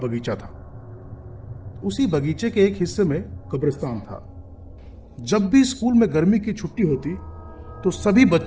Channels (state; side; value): identical; both; correlation 1.00